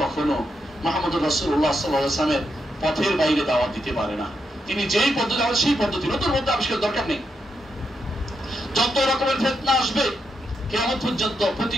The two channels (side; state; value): both; normal; correlation 0.82